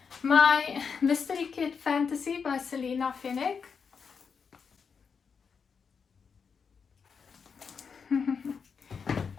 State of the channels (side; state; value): right; quieter; 6.0 dB